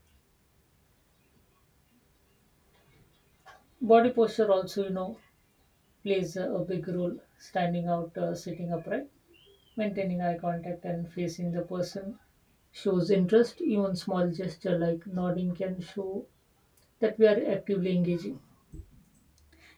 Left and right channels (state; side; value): identical; both; correlation 1.00